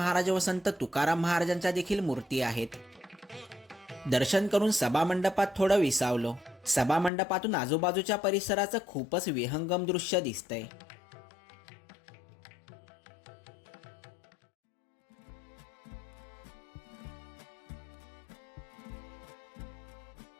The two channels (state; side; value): drops out; right; at 7.1 s